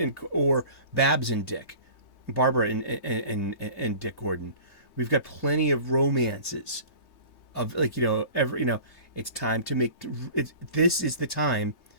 Babs and Dick, Barbara and Dick Gordon. We've got plenty of romances of, it's time to make this is the time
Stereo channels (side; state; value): right; late; 3.2 ms